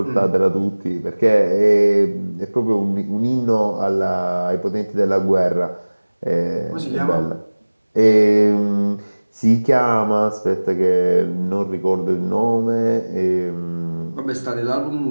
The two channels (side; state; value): both; inverted; correlation -1.00